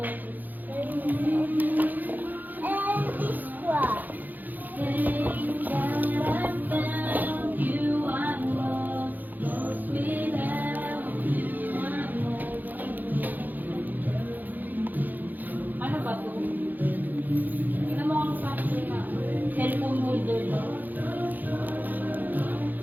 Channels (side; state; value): left; late; 0.085 ms